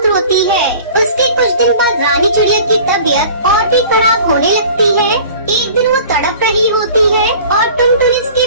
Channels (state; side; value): inverted; both; correlation -0.45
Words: रोती है। उसके कुछ दिन बाद रानी चिड़िया की तबीयत और भी खराब होने लगती है। एक दिन वो तड़प रही होती है और टुनटुनी उसके